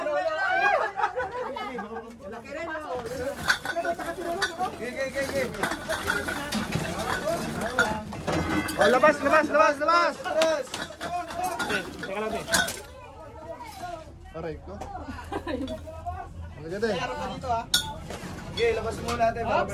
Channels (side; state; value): both; identical; correlation 1.00